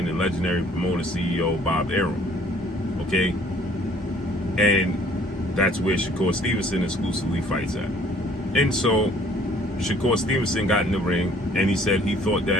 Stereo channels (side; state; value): both; normal; correlation 0.57